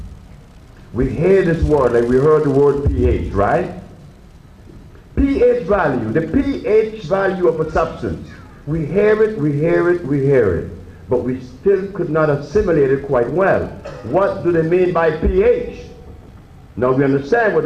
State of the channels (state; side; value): identical; both; correlation 1.00